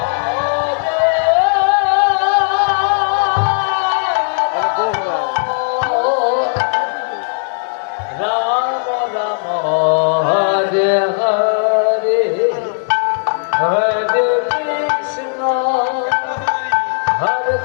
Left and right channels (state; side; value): silent; right; digital silence